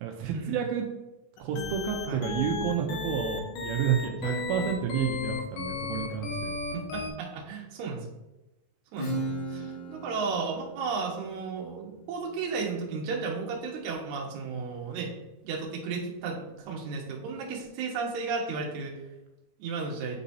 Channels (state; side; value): quieter; left; 4.0 dB